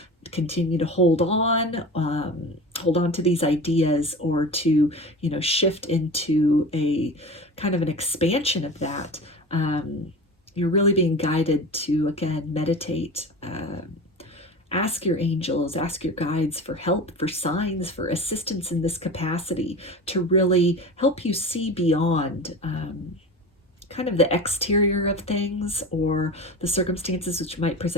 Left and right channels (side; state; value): both; normal; correlation 0.32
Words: continue to hold on to these ideas, or to, shift into a kind of an expansion of that. You're really being guided to, again, meditate, ask your angels, ask your guides for help, for signs, for assistance in this capacity, to really help you see beyond kind of the exterior of things, or the circumstances which might